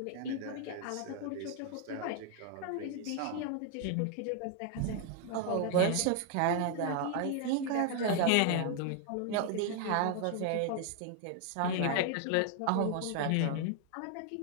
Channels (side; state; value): both; different; correlation 0.00